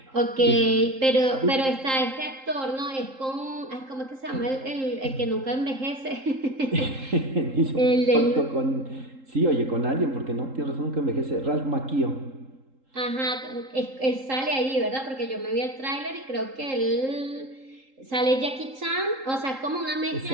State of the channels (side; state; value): left; late; 3.8 ms